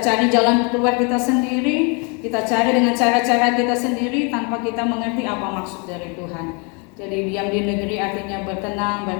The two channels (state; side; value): quieter; right; 34.0 dB